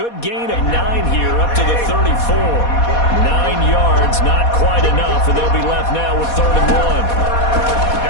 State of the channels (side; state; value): right; late; 4.2 ms